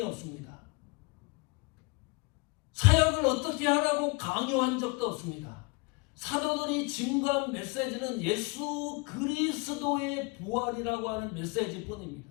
없습니다. 사역을 어떻게 하라고 강요한 적도 없습니다. 사도들이 증거한 메시지는 예수 그리스도의 부활이라고 하는 메시지뿐입니다.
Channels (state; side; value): quieter; right; 28.7 dB